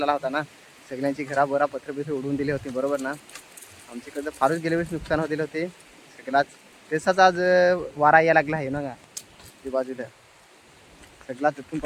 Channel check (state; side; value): identical; both; correlation 1.00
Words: आला होता ना, सगळ्यांची घरा बरा पत्र उडवून दिले होते, बरोबर ना. आमच्याकडे फारच गेल्या वर्षी नुकसान होते होते सगळ्याच. तसाच आज वारा यायला लागला आहे ना का ते बाजूला सगळा तिथून